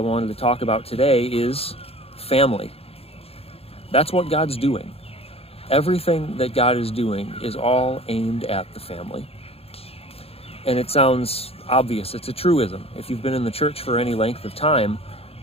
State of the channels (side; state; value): right; late; 0.28 ms